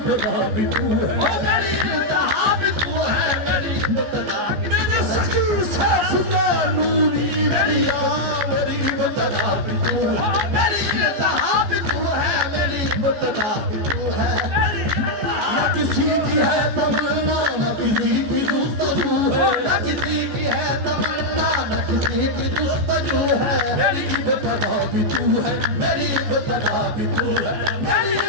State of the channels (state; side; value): late; left; 14 ms